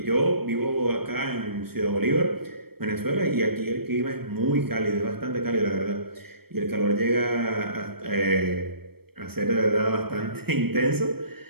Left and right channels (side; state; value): left; late; 0.96 ms